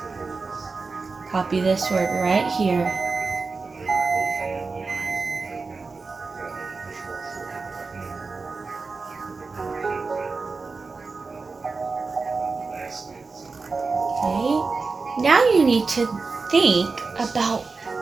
Copy this word right here. Okay, now you need to think about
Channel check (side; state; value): left; quieter; 4.2 dB